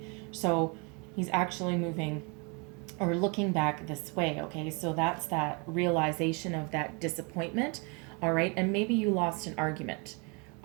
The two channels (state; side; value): quieter; left; 32.6 dB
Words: so he's actually moving or looking back this way, okay? So that's that realization of that disappointment, all right? And maybe you lost an argument,